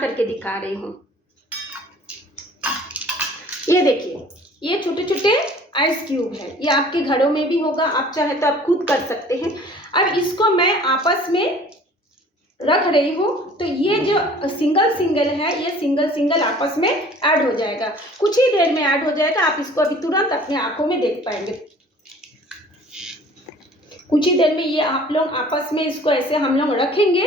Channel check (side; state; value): both; normal; correlation 0.50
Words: करके दिखा रही हूँ। ये देखिए, ये छोटे छोटे आइस क्यूब है। ये आपके घरों में भी होगा, आप चाहे तो आप खुद कर सकते हैं। अब इसको मैं आपस में रख रही हूँ, तो ये जो सिंगल है, ये सिंगल आपस में ऐड हो जाएगा। कुछ ही देर में ऐड हो जाएगा। आप इसको अभी तुरंत अपनी आंखों में देख पाएंगे। कुछ ही देर में ये आप लोग आपस में इसको ऐसे हम लोग रखेंगे